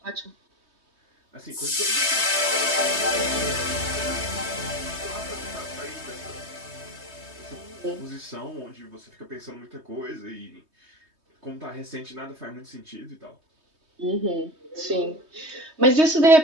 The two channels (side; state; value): left; late; 3.2 ms